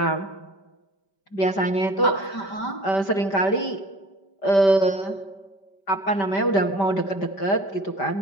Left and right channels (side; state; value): right; late; 5.1 ms